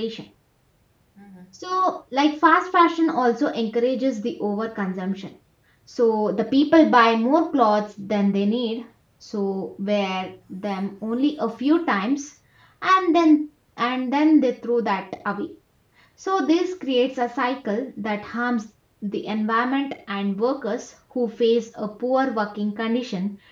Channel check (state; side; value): identical; both; correlation 1.00